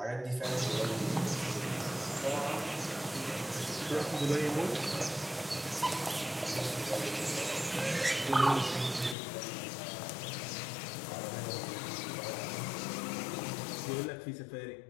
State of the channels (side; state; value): right; drops out; at 9.2 s